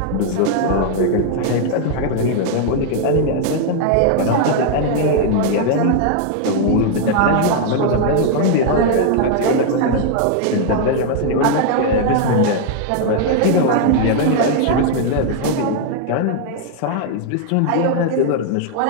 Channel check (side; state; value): both; different; correlation 0.00